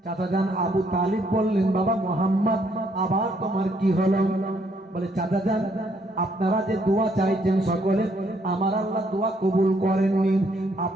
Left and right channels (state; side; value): normal; both; correlation 0.70